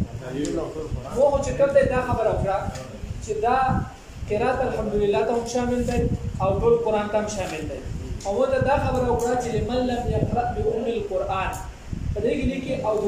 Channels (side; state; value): both; identical; correlation 1.00